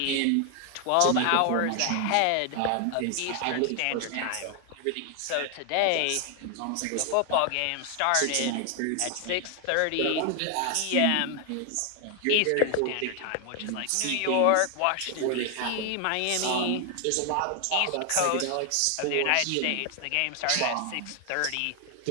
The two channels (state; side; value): different; both; correlation 0.00